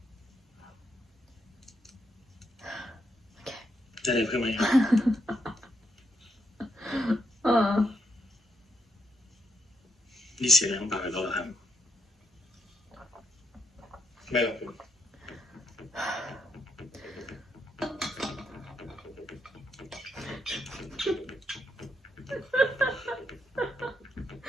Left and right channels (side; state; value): both; normal; correlation 0.78